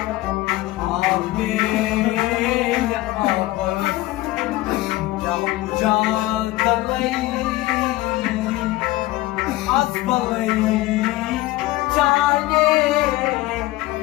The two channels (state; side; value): quieter; right; 18.1 dB